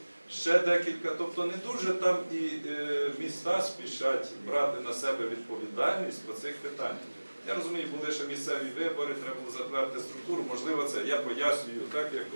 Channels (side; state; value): both; inverted; correlation -1.00